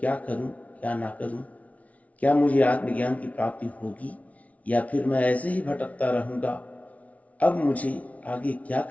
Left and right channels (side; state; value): right; late; 0.068 ms